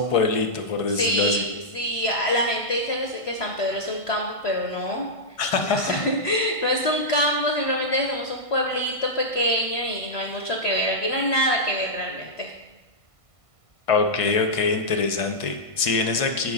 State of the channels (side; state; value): right; late; 1.5 ms